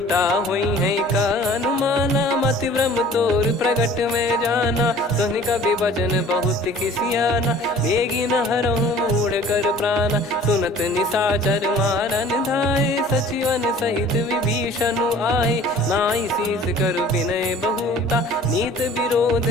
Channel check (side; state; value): both; normal; correlation 0.48